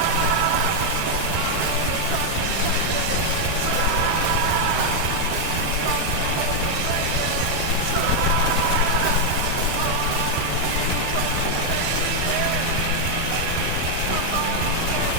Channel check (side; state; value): both; different; correlation 0.00